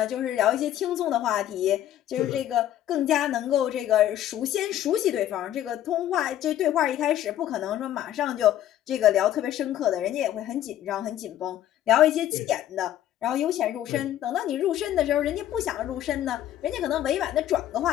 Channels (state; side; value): quieter; right; 12.1 dB